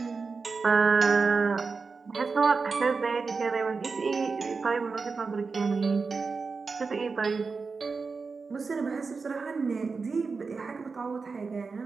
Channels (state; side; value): quieter; left; 4.6 dB